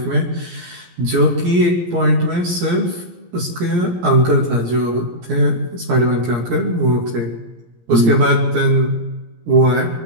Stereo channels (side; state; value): left; late; 17 ms